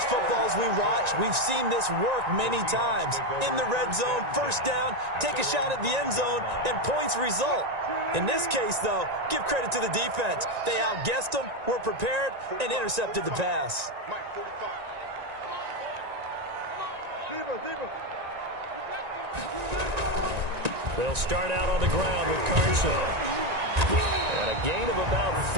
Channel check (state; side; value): late; left; 1.9 ms